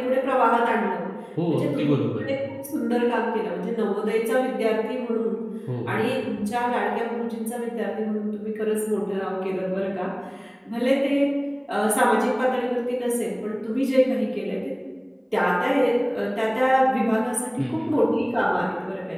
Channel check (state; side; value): identical; both; correlation 1.00